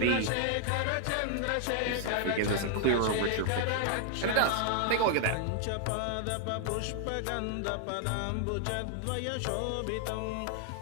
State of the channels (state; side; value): different; both; correlation 0.00